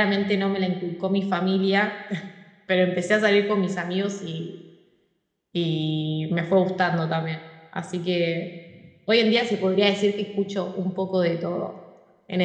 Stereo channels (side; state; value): both; identical; correlation 1.00